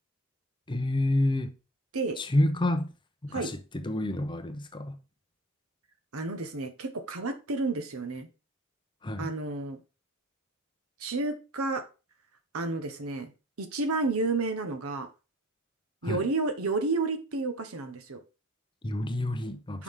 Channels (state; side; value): normal; both; correlation 0.48